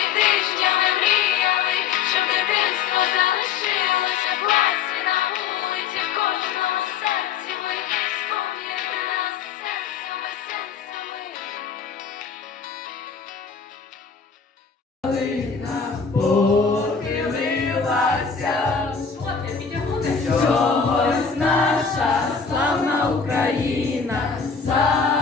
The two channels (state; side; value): quieter; right; 6.2 dB